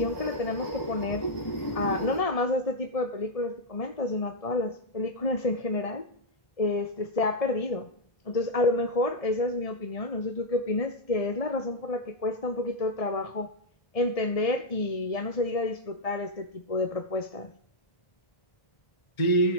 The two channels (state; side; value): late; right; 1.7 ms